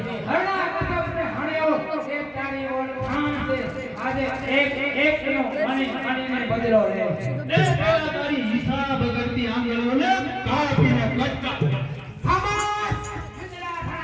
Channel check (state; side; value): identical; both; correlation 1.00